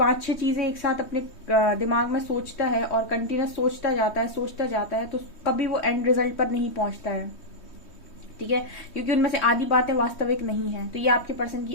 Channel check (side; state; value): right; late; 3.2 ms